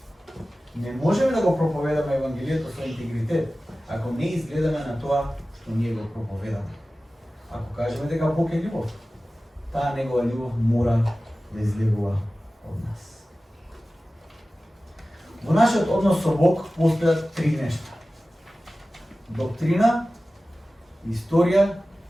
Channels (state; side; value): normal; both; correlation 0.96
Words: Не можеме да го проповедаме Евангелието со интегритет, ако не изгледаме на тоа што ние го проповедаме. Ако кажеме дека Бог е љубов, таа негова љубов мора да излегува од нас. Во нашиот однос со Бог постојат три нешта: доктрина, историја